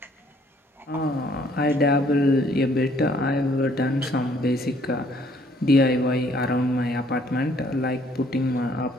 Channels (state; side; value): normal; both; correlation 0.62